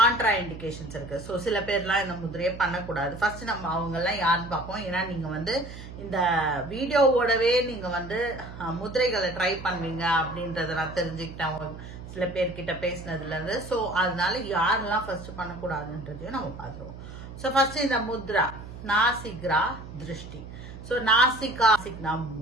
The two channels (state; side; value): noise; right; hum, 13 dB below the sound